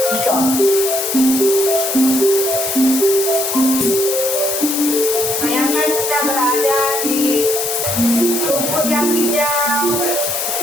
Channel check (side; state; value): left; noise; hiss, 3 dB below the sound